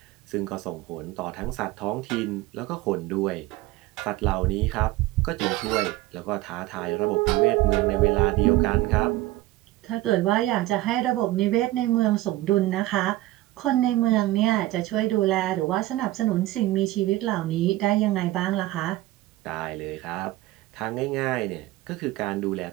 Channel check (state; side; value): quieter; left; 17.1 dB